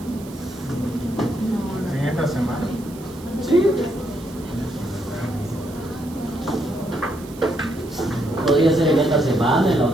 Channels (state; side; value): noise; right; hiss, 21 dB below the sound